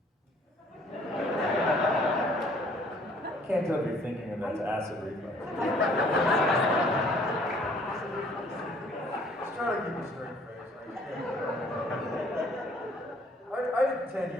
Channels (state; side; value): normal; both; correlation 0.58